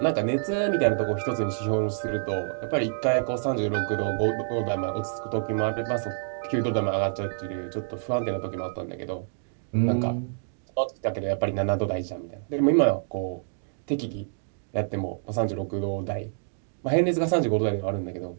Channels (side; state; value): left; silent; digital silence